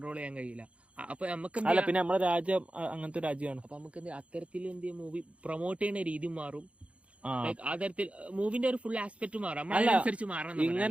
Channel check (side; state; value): left; late; 0.062 ms